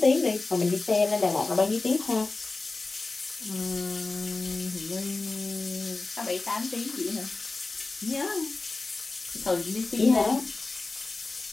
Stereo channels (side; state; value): right; quieter; 3.5 dB